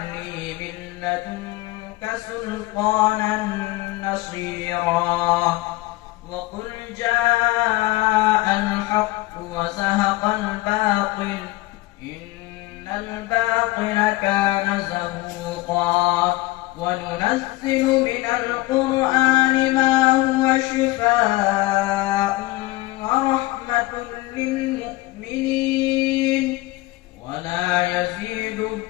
لي من لدنك سلطانا نصيرا. وقل جاء الحق وزهق الباطل إن الباطل كان زهوقا. وننزل من القرآن ما هو شفاء ورحمة للمؤمنين ولا يزيد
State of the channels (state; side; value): quieter; right; 19.3 dB